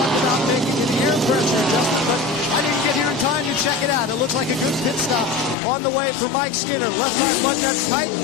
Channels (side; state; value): right; drops out; at 5.6 s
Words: about making an air pressure adjustment, but I didn't get here in time to check it out. It looks like a good pit stop on the way for Mike Skinner. Left side button that's tight,